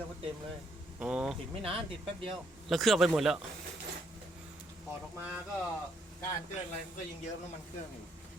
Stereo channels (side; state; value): both; normal; correlation 0.71